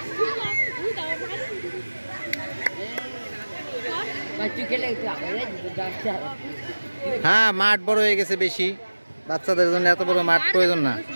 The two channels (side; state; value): both; inverted; correlation -1.00